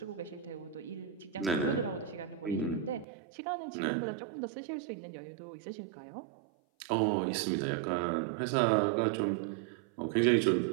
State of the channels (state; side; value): drops out; left; at 3.1 s